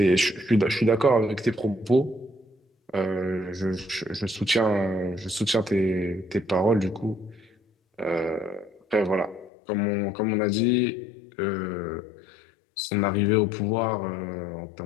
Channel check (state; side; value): drops out; right; at 9.5 s